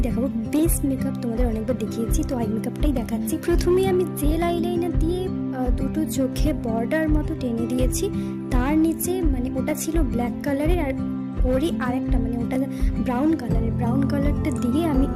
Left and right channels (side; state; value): both; identical; correlation 1.00